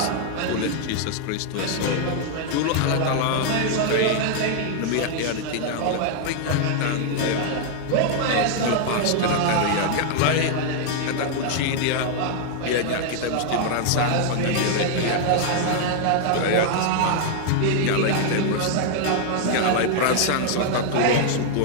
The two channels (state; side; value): different; both; correlation 0.00